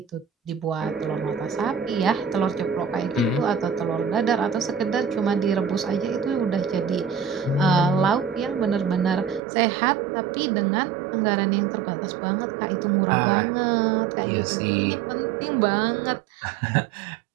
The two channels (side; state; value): left; drops out; at 9.4 s